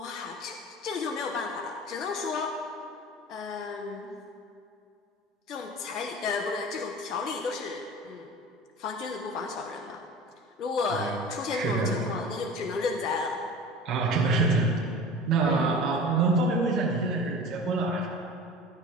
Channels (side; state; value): both; normal; correlation 0.37